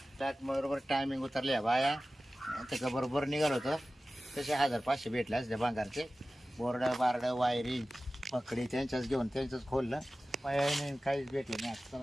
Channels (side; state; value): both; normal; correlation 0.96